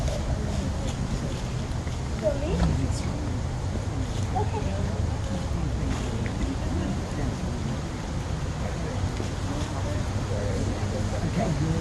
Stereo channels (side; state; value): both; identical; correlation 1.00